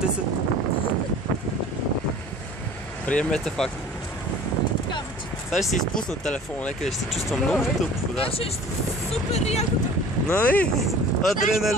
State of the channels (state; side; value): normal; both; correlation 0.45